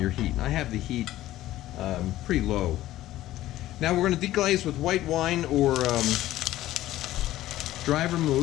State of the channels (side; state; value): right; quieter; 14.9 dB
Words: heat. And I have the heat pretty low. Now we're going to deglaze with white wine or dry